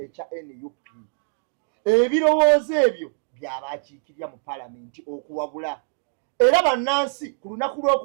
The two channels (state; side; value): silent; left; digital silence